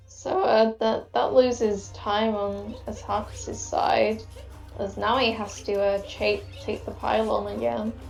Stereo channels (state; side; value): identical; both; correlation 1.00